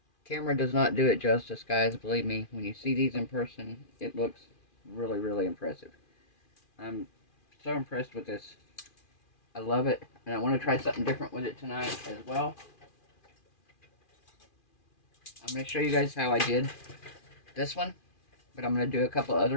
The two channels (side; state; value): right; late; 2.4 ms